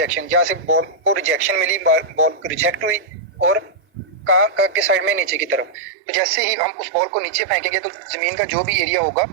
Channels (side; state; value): left; drops out; at 5.8 s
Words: जहाँ से बॉल को रिजेक्शन मिली, बॉल रिजेक्ट हुई और कहाँ के साइड में? नीचे की तरफ। तो जैसे ही हम उस बॉल को नीचे फेंकेंगे तो जमीन का जो भी एरिया होगा